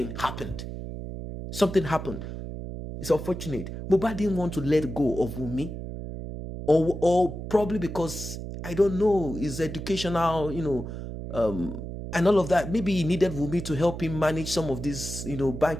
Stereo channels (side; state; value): right; noise; hum, 8 dB below the sound